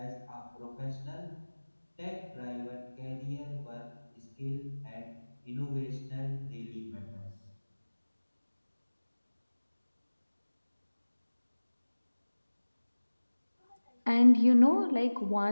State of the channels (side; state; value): both; inverted; correlation -1.00